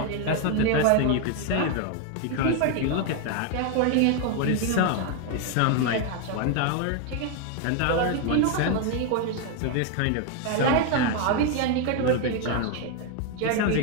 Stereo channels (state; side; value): different; both; correlation 0.01